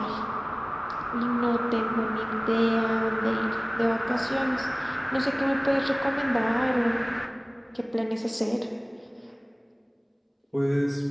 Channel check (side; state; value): both; identical; correlation 1.00